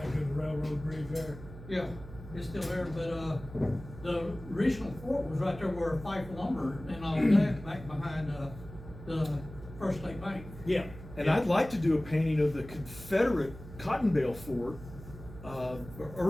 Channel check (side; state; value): right; noise; hum, 15 dB below the sound